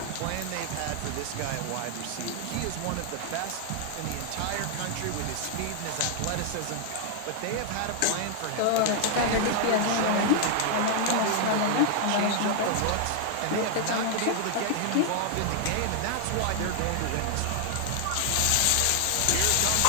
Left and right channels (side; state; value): both; different; correlation 0.00